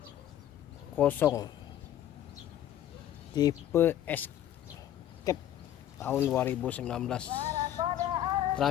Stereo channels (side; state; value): right; quieter; 11.5 dB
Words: tipe Escape tahun 2019,